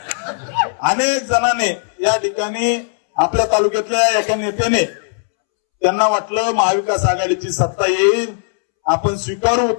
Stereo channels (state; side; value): silent; right; 68 dB below the other